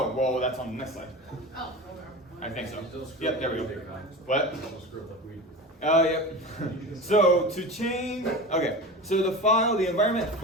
well, that's on the next slide. Oh, okay. I think so. Still screw Yep, up there we like go. we do. What? Still screw up like we do. Oh, yep. So to change, okay. So the environment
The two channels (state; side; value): normal; both; correlation 0.30